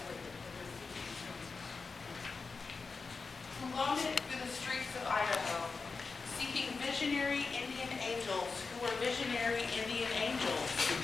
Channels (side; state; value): right; quieter; 4.5 dB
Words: with their feet. Who wandered through the streets of Idaho, seeking visionary Indian angels who were visionary Indian angels.